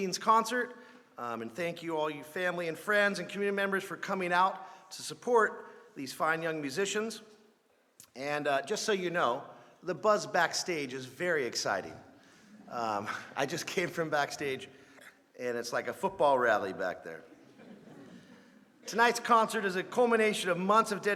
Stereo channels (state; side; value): identical; both; correlation 1.00